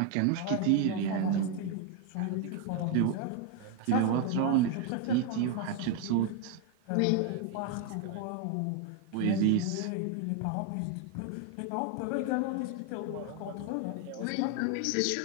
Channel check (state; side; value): different; both; correlation 0.01